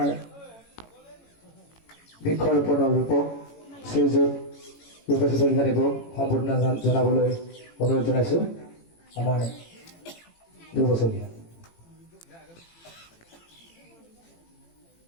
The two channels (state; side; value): late; right; 18 ms